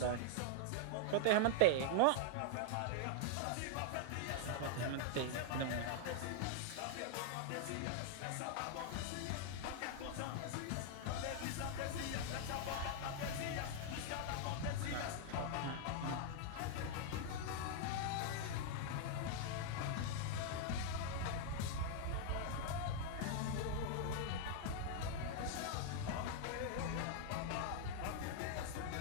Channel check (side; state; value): both; different; correlation 0.00